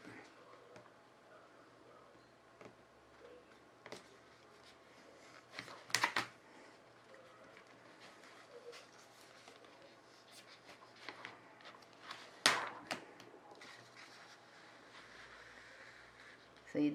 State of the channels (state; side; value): identical; both; correlation 1.00